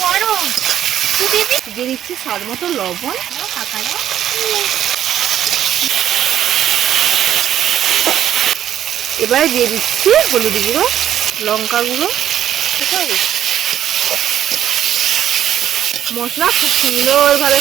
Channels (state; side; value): quieter; left; 10.9 dB